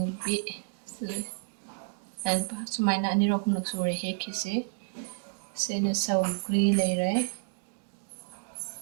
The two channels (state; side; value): silent; left; digital silence